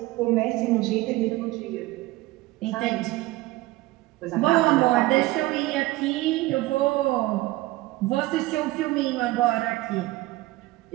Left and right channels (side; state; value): left; quieter; 18.9 dB